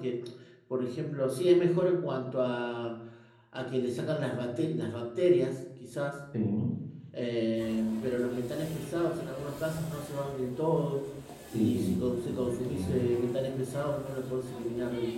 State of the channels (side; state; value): both; identical; correlation 1.00